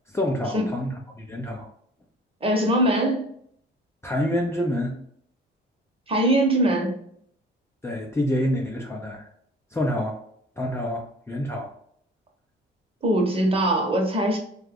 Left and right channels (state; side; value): normal; both; correlation 0.47